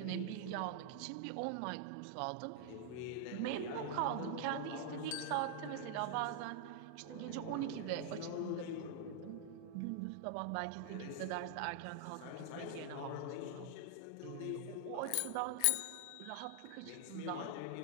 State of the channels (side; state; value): both; different; correlation 0.00